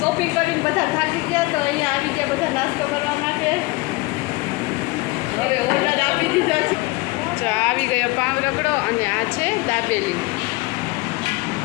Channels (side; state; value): right; quieter; 22.9 dB